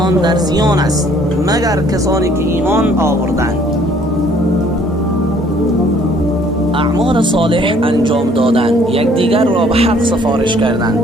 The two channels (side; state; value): both; normal; correlation 0.59